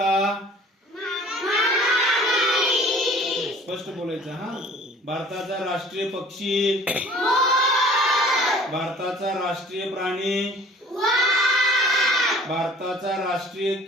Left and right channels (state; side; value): normal; both; correlation 0.50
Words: स्पष्ट बोलायचं हा भारताचा राष्ट्रीय पक्षी भारताचा राष्ट्रीय प्राणी भारताचा राष्ट्रीय